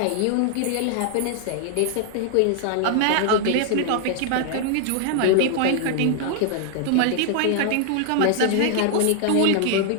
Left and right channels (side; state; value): both; different; correlation 0.00